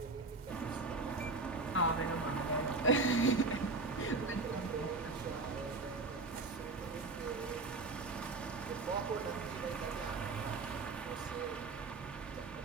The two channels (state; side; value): quieter; left; 3.6 dB